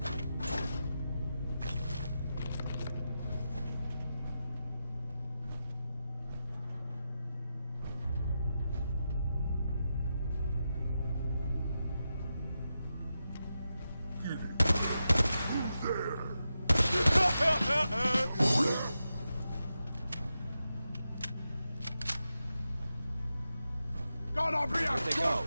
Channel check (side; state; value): both; inverted; correlation -0.89